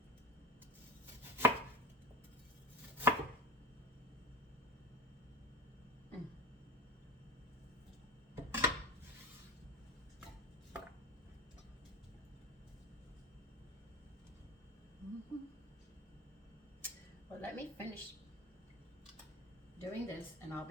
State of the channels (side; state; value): both; normal; correlation 0.29